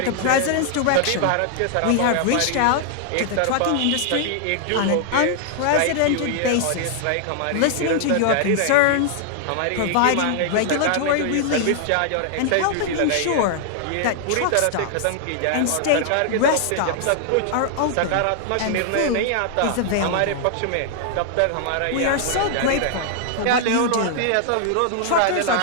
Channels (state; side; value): different; both; correlation 0.00